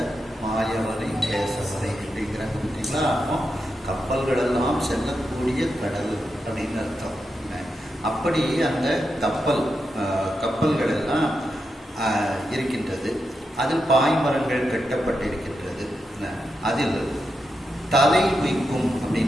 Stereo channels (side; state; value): both; normal; correlation 0.86